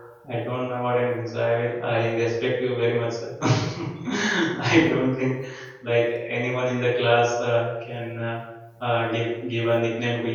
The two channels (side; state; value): both; identical; correlation 1.00